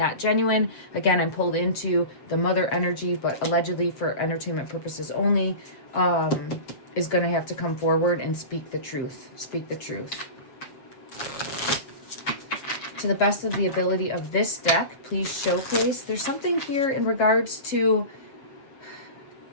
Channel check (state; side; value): late; right; 7.5 ms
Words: genuine. Again, I'm pulled into the mother energy, but allegedly for entertainment purposes only, is going to have to come forward and speak the truth. Speak the truth. To the best of the ability of this deck, please showcase. There's something here in regards to